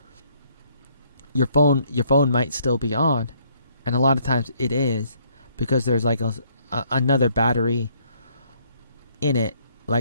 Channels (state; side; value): inverted; both; correlation -0.66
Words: your phone might still be on, and a lot of times it is because there's like another battery in it,